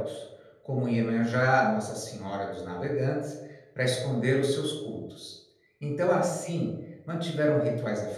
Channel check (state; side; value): identical; both; correlation 1.00